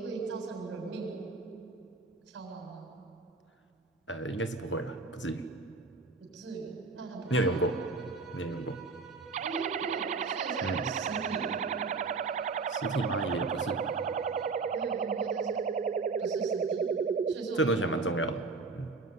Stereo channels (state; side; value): quieter; left; 4.1 dB